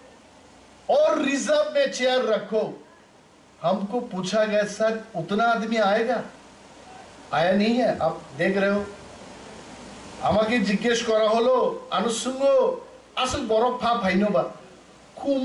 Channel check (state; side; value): identical; both; correlation 1.00